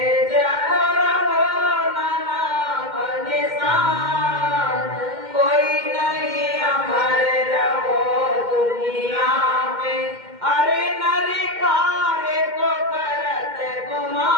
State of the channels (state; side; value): late; left; 2.1 ms